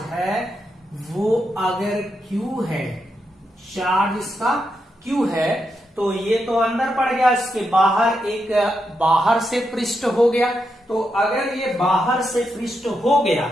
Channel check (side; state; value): both; normal; correlation 0.84